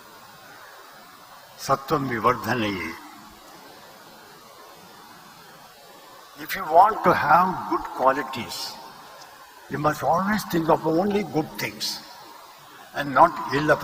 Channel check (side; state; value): both; identical; correlation 1.00